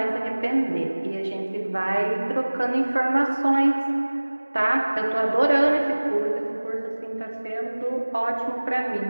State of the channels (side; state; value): both; inverted; correlation -1.00